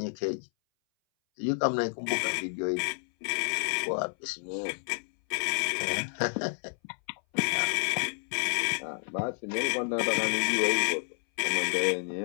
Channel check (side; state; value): right; silent; 58 dB below the other